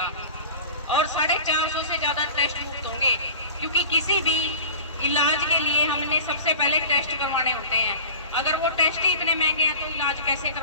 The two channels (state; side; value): inverted; both; correlation -0.38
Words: और 450 से ज्यादा टेस्ट मुफ्त होंगे, क्योंकि किसी भी इलाज के लिए हमने सबसे पहले टेस्ट करवाने होते हैं। अगर वो टेस्ट ही इतने महंगे हैं तो इलाज कैसे